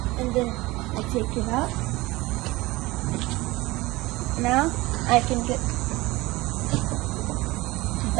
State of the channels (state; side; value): quieter; left; 20.6 dB